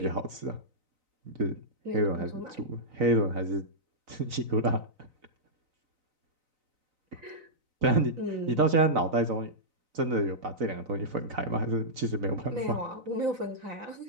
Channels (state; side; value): late; left; 3.9 ms